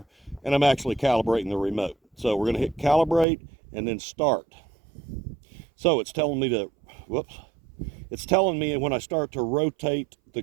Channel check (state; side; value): drops out; left; at 3.2 s